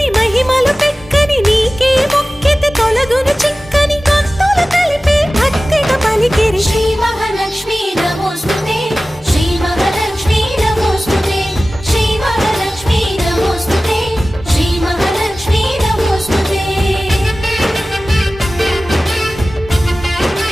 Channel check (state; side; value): normal; both; correlation 0.96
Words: మహిమలు పెక్కని నీకే మొక్కితే తొలగును చిక్కని భక్తులు కలిపే భక్తిగా పలికిరి శ్రీ మహాలక్ష్మీ నమోస్తుతే శ్రీ మహాలక్ష్మీ నమోస్తుతే శ్రీ మహాలక్ష్మీ నమోస్తుతే శ్రీ మహాలక్ష్మీ నమోస్తుతే